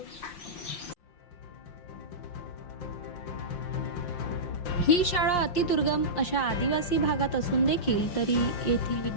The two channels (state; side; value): late; right; 5.6 ms